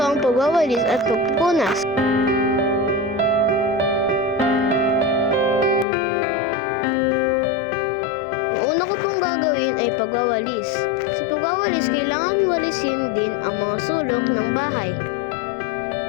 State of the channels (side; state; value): right; drops out; at 5.9 s